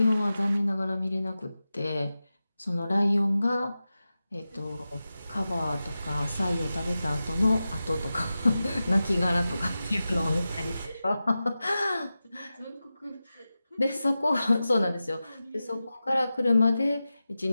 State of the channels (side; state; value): both; inverted; correlation -0.93